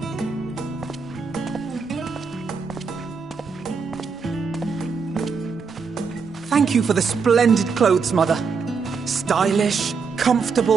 Thank you for the splendid clothes, Mother. Stylish,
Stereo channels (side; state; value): left; quieter; 5.3 dB